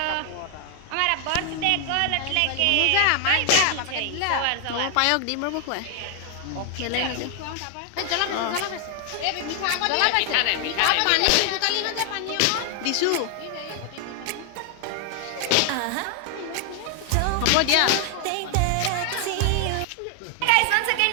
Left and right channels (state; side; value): different; both; correlation 0.00